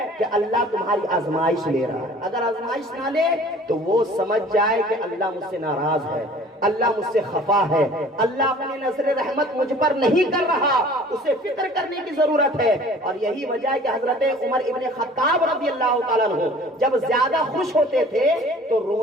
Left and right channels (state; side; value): normal; both; correlation 0.48